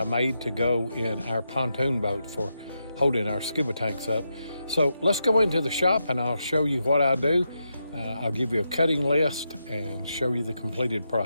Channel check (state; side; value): inverted; both; correlation -0.85